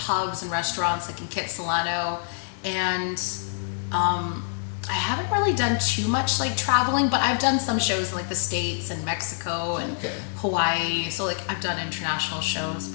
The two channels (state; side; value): silent; right; digital silence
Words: and restaurants like in Kitsilano, and I haven't really done too much like traveling, but I've done some shows in like the States and Mexico and Hawaii. So like I've done international shows,